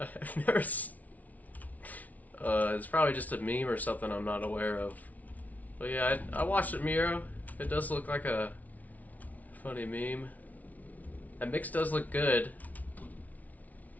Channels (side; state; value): right; late; 0.073 ms